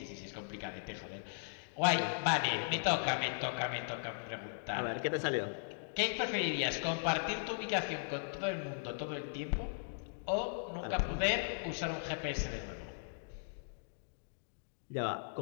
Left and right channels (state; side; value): silent; right; digital silence